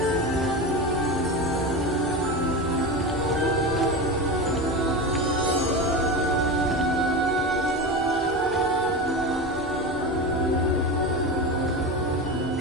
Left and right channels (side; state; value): both; normal; correlation 0.23